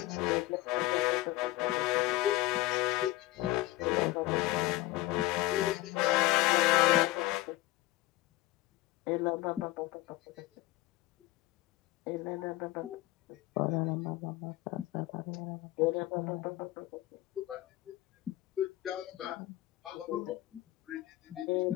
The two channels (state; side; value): quieter; right; 17.7 dB